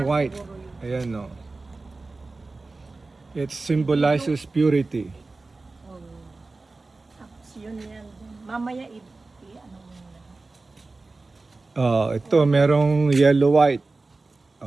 white. Ayan o. It symbolizes purity. Tapos yun yan. Mamaya ano mo na. Ito, merong yellow white.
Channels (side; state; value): left; quieter; 3.5 dB